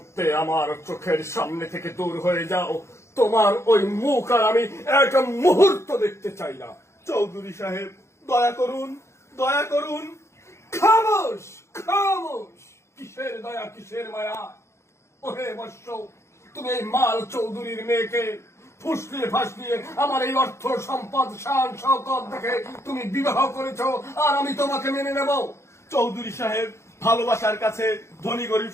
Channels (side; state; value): right; late; 0.13 ms